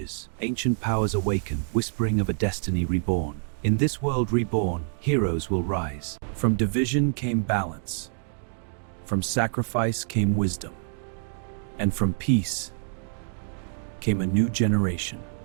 Ancient powers awaken, whispering of a destiny reborn. In this world reborn, heroes will rise. From division came balance. From sacrifice came wisdom. And from peace came a new generation.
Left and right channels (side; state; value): left; silent; 60 dB below the other